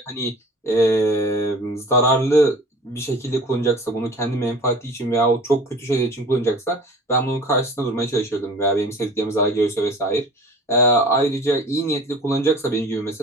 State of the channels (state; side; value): normal; both; correlation 0.42